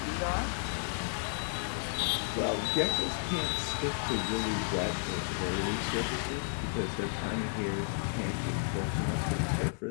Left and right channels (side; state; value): right; silent; 56 dB below the other